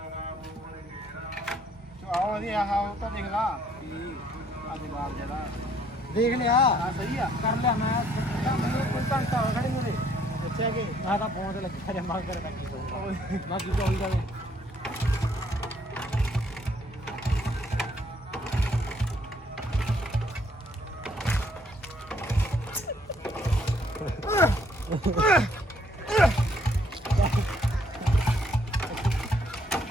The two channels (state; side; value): normal; both; correlation 0.66